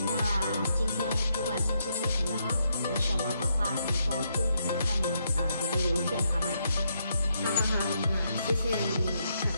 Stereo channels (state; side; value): inverted; both; correlation -0.77